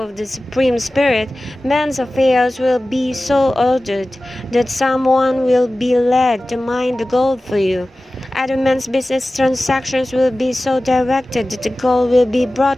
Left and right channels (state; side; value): normal; both; correlation 0.96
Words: of the Supreme Spirit, man's affairs will be so ordered that someone will be led to mine the gold for you. Other men's business transactions will be so directed that the gold will be